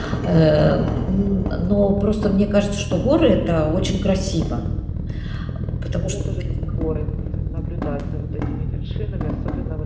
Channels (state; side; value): identical; both; correlation 1.00